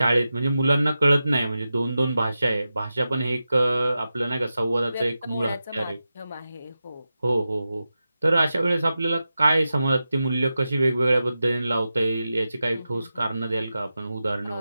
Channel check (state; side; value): inverted; both; correlation -0.92